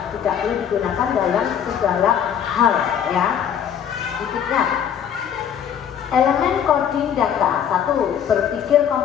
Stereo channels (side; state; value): right; quieter; 8.8 dB